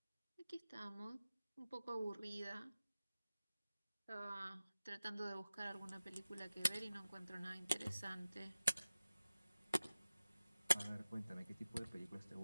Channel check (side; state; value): both; inverted; correlation -0.96